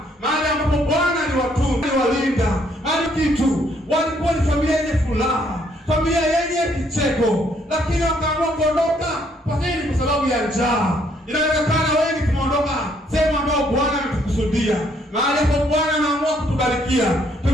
mahali ambapo Bwana aliwatunza, aliwalinda, alikitu, walikuwa ni familia yenye furaha, familia yenye kicheko, lakini wakaamua kuondoka kwa nini? Kwa sababu ya njaa. Inawezekana wengi tumeondoka sehemu ambayo Bwana ametukusudia, mahali ambapo Bwana anaamua kutubarikia.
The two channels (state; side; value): normal; both; correlation 0.68